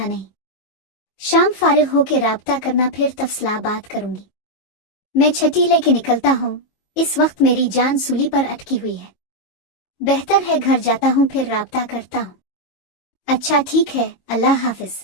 नहीं। शाम फारिग होके राब्ता करना, फिर तफसला बात करूंगी। मैं छठी लेके निकलता हूँ। इस वक्त मेरी जान सूली पर अटकी हुई है। बेहतर है घर जाता हूँ, फिर राब्ता करता हूँ। अच्छा ठीक है, अल्लाह हाफिज।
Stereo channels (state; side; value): late; right; 22 ms